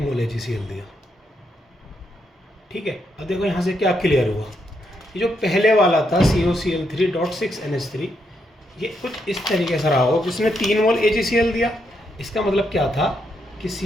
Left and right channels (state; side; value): normal; both; correlation 0.79